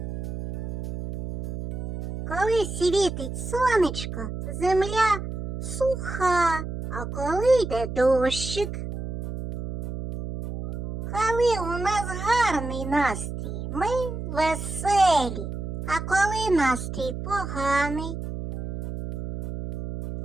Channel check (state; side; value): noise; right; hum, 6 dB below the sound